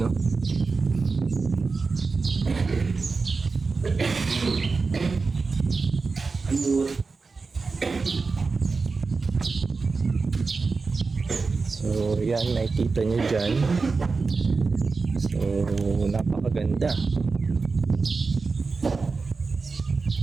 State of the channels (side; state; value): left; quieter; 4.3 dB